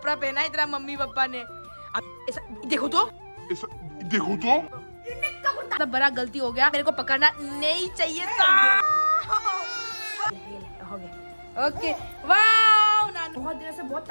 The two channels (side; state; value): both; inverted; correlation -1.00